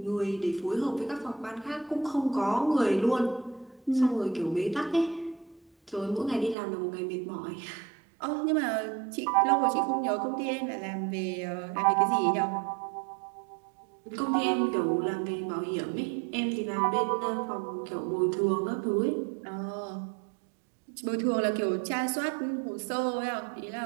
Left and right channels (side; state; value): left; drops out; at 6.6 s